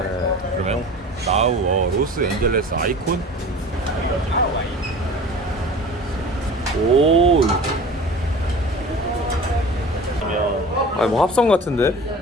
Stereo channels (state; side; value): normal; both; correlation 0.39